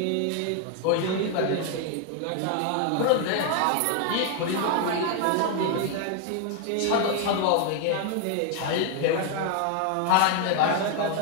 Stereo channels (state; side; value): different; both; correlation 0.00